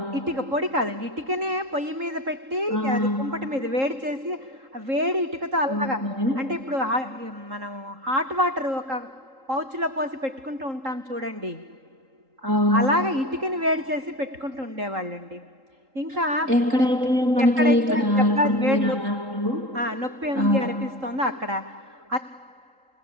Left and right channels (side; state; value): left; late; 3.8 ms